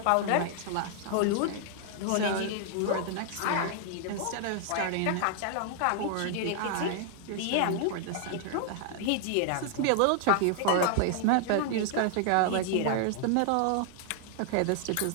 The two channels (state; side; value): different; both; correlation 0.00